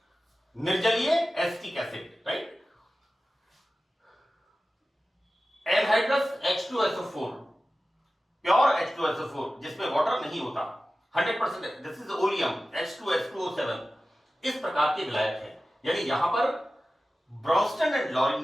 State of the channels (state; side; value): normal; both; correlation 0.95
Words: निर्जलीय acetic acid, right. Anhydrous H2SO4, pure H2SO4 जिसमें वाटर नहीं होता, 100%, दिस इज ओलियम H2H2O7, इस प्रकार के विलायक है। यानी यहां पर ब्रॉन्स्टन एंड लाउरी